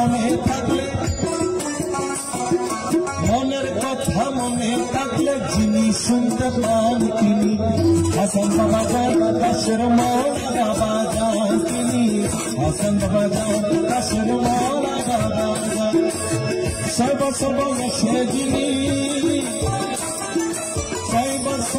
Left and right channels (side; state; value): both; identical; correlation 1.00